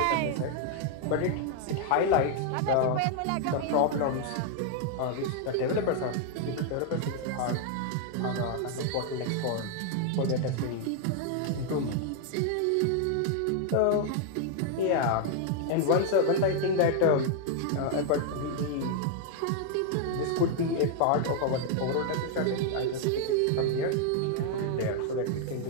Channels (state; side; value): different; both; correlation 0.00